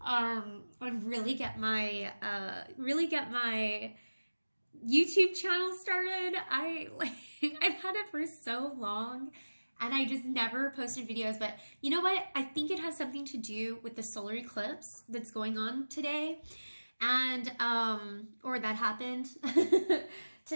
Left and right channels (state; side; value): inverted; both; correlation -1.00